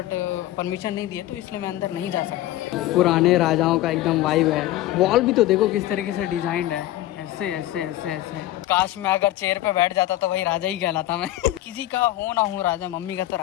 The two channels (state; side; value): quieter; right; 15.1 dB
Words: परमिशन नहीं दिया, तो इसलिए मैं अंदर नहीं जा सकता। पुराने राजाओं का एकदम वाइब है। वॉल भी तो देखो किस तरीके से डिजाइंड है, ऐसे ऐसे ऐसे ऐसे। काश मैं अगर चेयर पे बैठ जाता तो वही राजा ही कहलाता मैं। किसी का हो ना हो राजा, मम्मी का तो